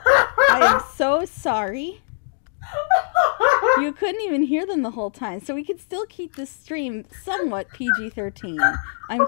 I am so sorry. You couldn't even hear them the whole time, so we could still keep this stream somewhat PG-13. I'm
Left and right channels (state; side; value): silent; right; digital silence